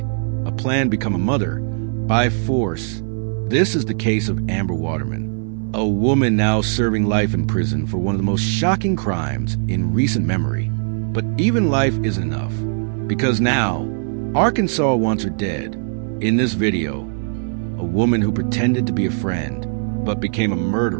a plan to become a mother by force. This is the case of Amber Waterman, a woman now serving life in prison for one of the most shocking crimes in recent memory. But even life isn't enough, because now Arkansas wants her dead. In this video, a woman who pretended to be a friend but became a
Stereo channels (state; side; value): silent; left; 58 dB below the other